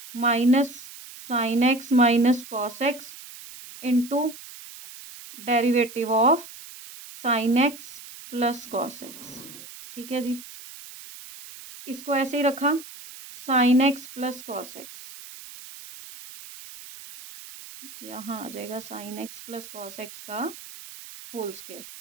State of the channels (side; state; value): right; noise; hiss, 16 dB below the sound